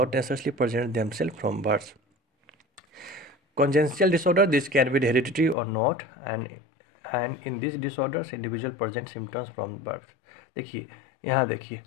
necessarily present themselves from birth. Congenital disorder, this can be hereditary or not, and in these disorders, individual present symptoms from birth. देखिए, यहाँ देखिए,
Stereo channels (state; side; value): drops out; right; at 5.6 s